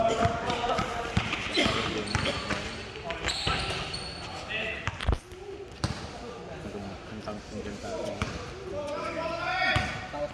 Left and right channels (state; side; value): identical; both; correlation 1.00